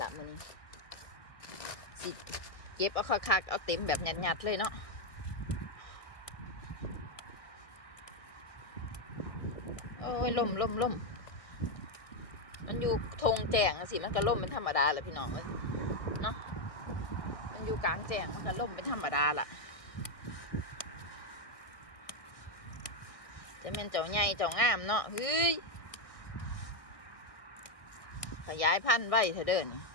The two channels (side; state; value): right; late; 1.6 ms